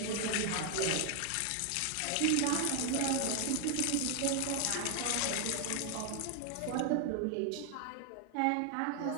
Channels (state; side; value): different; both; correlation 0.00